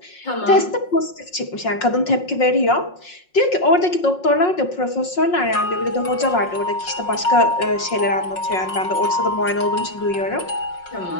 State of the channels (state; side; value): late; right; 5.5 ms